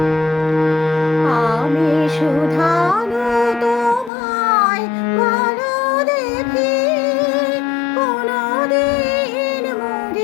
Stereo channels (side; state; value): right; drops out; at 4.1 s